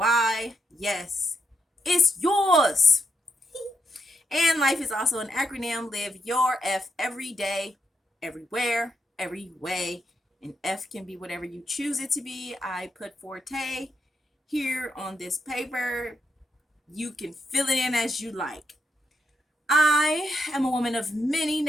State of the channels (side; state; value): both; normal; correlation 0.81